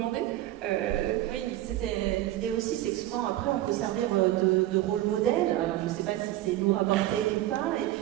Oui, c'était l'idée aussi, c'est que souvent après on peut servir de rôle modèle. Alors je ne sais pas si c'est lourd à porter ou pas, et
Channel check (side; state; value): left; quieter; 14.6 dB